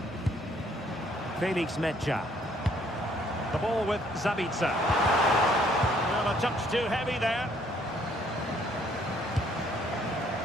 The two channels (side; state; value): both; normal; correlation 0.64